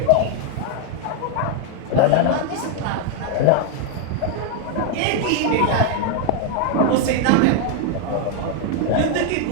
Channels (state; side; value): different; both; correlation 0.01